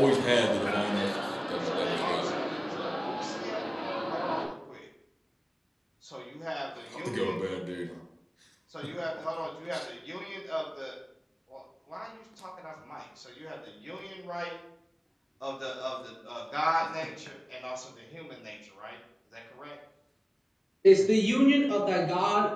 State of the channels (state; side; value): identical; both; correlation 1.00